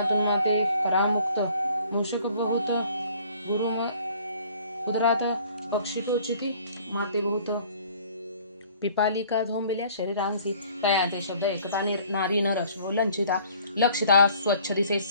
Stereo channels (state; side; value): inverted; both; correlation -0.55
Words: माते परामुक्त मूषक बहुत गुरु उदरात पक्षी टोचिती माते बहुत पिपालिका झोंबल्या शरीरांसी तयाचे शब्द एकता नारी नर लंचिता लक्षिता स्वच्छ दिसे